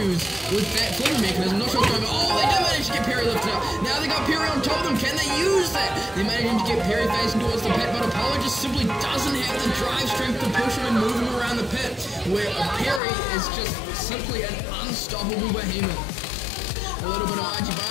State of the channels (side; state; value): right; drops out; at 13.0 s